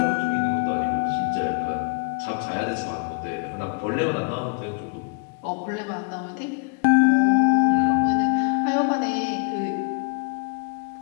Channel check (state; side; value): quieter; right; 36.2 dB